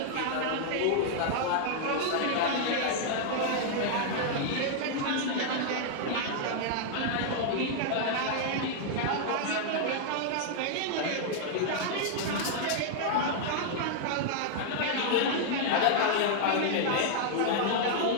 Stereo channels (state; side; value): different; both; correlation -0.01